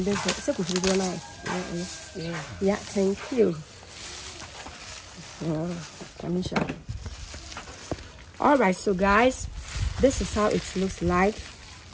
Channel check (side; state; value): both; identical; correlation 1.00